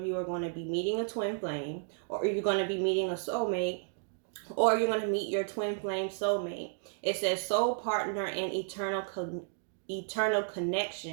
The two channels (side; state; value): left; silent; digital silence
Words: you are going to be meeting a twin flame, or you're going to be meeting a soulmate, or you're going to meet your twin flame soulmate. It says soul partner and eternal